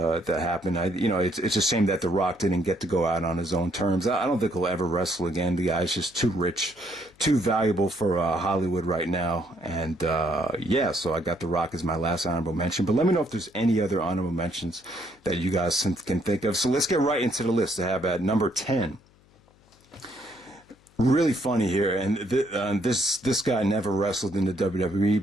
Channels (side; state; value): left; noise; hum, 30 dB below the sound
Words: happened. It's a shame that The Rock didn't get to go out on his own terms. I don't think he'll ever wrestle again. The guy's just too rich, too valuable for Hollywood right now. And yeah, so I got The Rock as my last honorable mention. But let me know if there's any other honorable mentions that you guys can think of. So let's get right into the list. I have at number 10. Really funny here, and this guy never wrestled in the WWE,